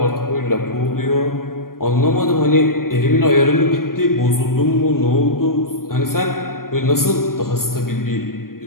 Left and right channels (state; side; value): late; right; 0.92 ms